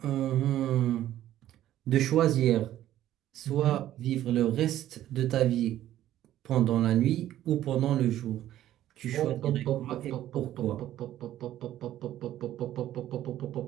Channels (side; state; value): left; quieter; 12.9 dB